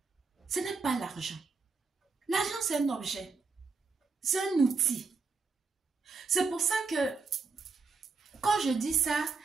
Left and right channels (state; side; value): quieter; left; 4.5 dB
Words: Ce n'est pas l'argent. L'argent, c'est un objet. C'est un outil. C'est pour ça que quand je dis ça,